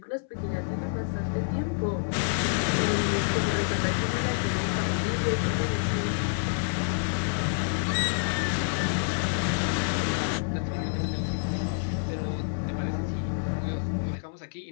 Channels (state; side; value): silent; right; 59 dB below the other